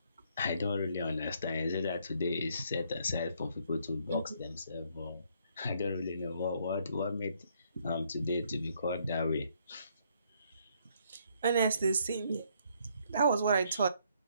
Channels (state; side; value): inverted; both; correlation -0.69